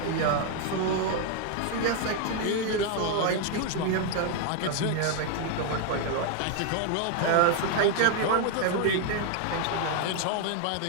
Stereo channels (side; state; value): both; different; correlation 0.00